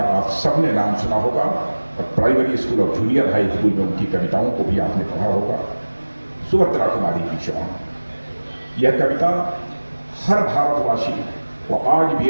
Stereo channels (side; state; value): both; inverted; correlation -1.00